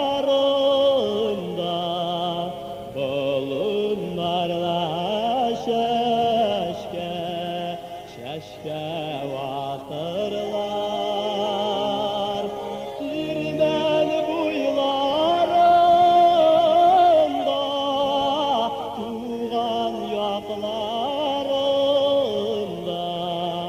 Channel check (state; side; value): identical; both; correlation 1.00